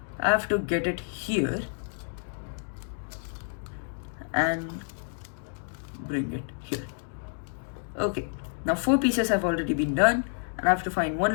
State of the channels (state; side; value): silent; right; 59 dB below the other